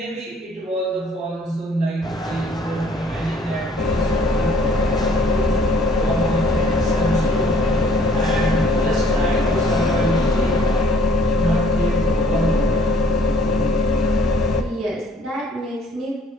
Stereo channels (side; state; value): both; normal; correlation 0.59